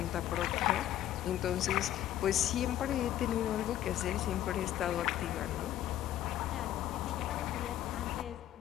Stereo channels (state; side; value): quieter; right; 12.2 dB